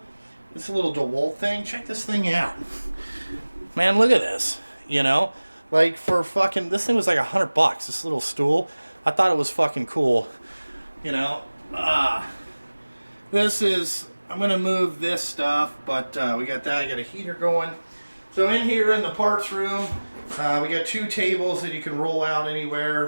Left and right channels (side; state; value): both; inverted; correlation -1.00